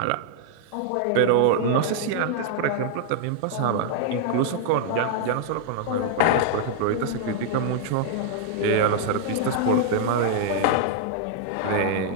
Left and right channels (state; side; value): different; both; correlation 0.00